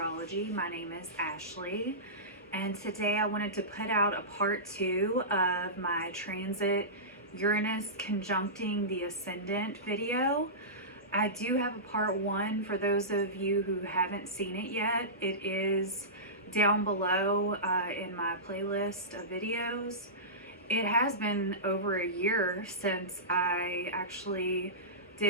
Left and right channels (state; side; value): normal; both; correlation -0.20